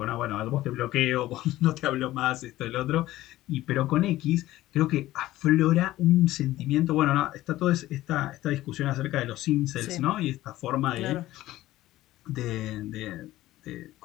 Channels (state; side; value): quieter; right; 15.8 dB